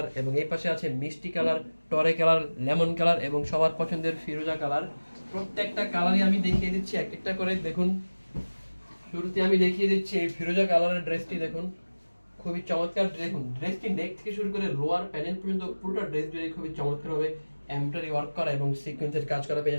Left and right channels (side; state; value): both; inverted; correlation -1.00